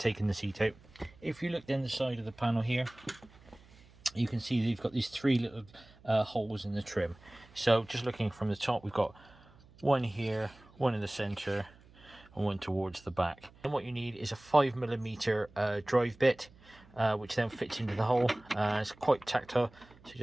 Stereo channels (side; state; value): right; noise; hum, 25 dB below the sound